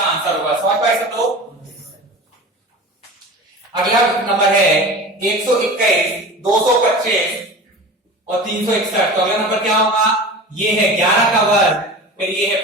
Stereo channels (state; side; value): normal; both; correlation 0.34